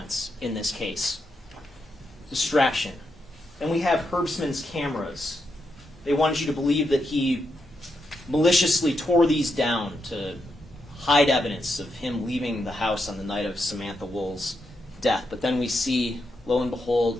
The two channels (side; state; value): both; normal; correlation 0.83